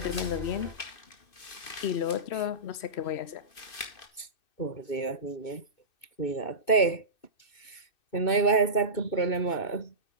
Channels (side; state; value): right; late; 2.5 ms